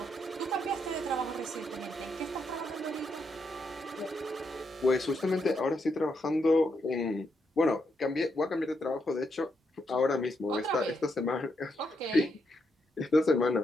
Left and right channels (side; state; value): both; normal; correlation 0.80